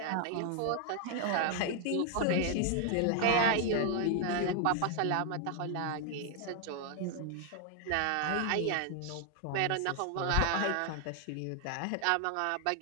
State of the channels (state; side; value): different; both; correlation 0.00